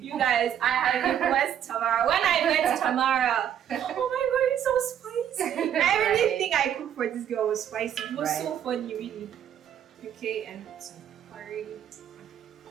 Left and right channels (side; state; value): left; quieter; 9.7 dB